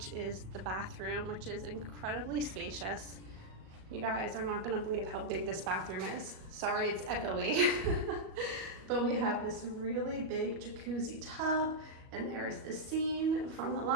is the bathroom, which is incredibly spacious. You guys are not gonna believe how big this bathroom is. Sorry, it's echoey. But we have this really big jacuzzi tub, and there is the scene from The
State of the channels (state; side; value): late; left; 38 ms